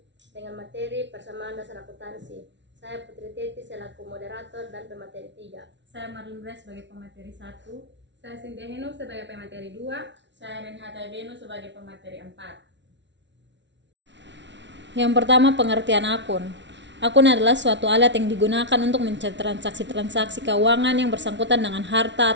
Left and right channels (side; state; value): left; late; 0.52 ms